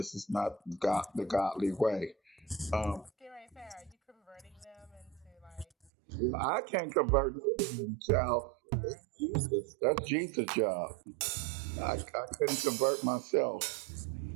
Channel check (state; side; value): drops out; left; at 5.9 s